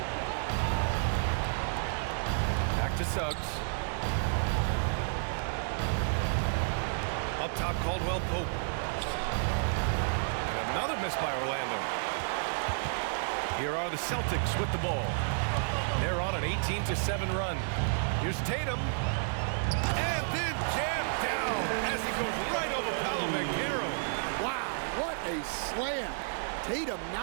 Back to Suggs. Up top, Caldwell-Pope. And another miss by Orlando. Here are the Celtics with the ball. They're on an 18-7 run. Here's Tatum. And then jammed down as he goes right over Paolo Banchero. Wow, what a slam. Tatum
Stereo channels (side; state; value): left; silent; digital silence